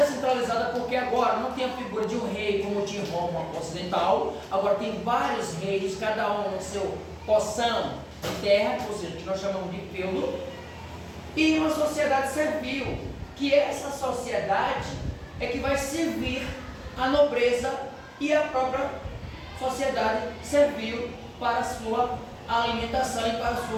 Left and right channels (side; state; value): both; identical; correlation 1.00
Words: porque agora não tem a figura de um rei como tinha em Roma ocidental, agora tem vários reis, cada um no seu porção de terra, ou seja, que nós chamamos de feudo, e uma sociedade servil, que essa sociedade é que vai servir a nobreza e a própria sociedade servil para a sua alimentação e para a sua